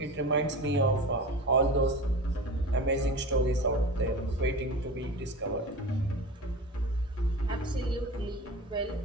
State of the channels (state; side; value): normal; both; correlation 0.32